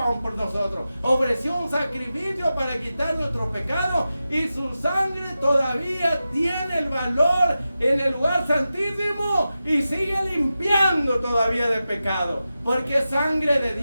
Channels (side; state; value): both; inverted; correlation -0.92